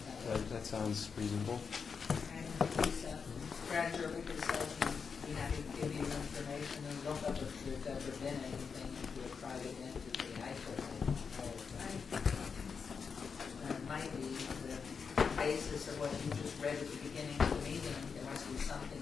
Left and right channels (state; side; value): quieter; right; 5.8 dB